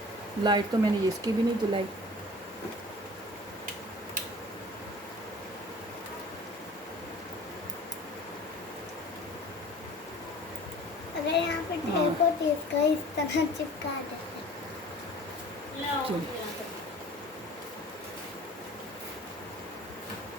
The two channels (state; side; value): normal; both; correlation 0.45